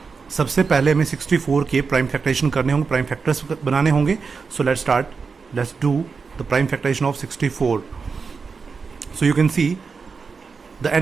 सबसे पहले हमें 64 के प्राइम फैक्टराइजेशन करने होंगे, प्राइम फैक्टर्स बनाने होंगे. So let's do the prime factorization of 64. So you can see the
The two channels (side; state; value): left; quieter; 5.1 dB